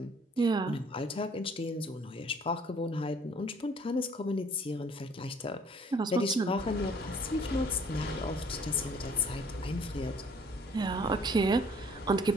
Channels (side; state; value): both; normal; correlation 0.57